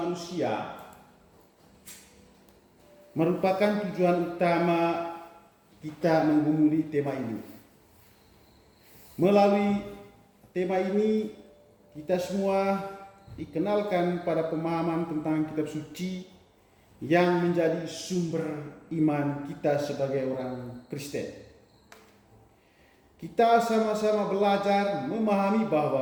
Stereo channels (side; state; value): both; identical; correlation 1.00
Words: merupakan tujuan utama kita menggumuli tema ini. Melalui tema ini kita semua dikenalkan pada pemahaman tentang kitab suci yang menjadi sumber iman kita sebagai orang Kristen. Kita sama-sama belajar memahami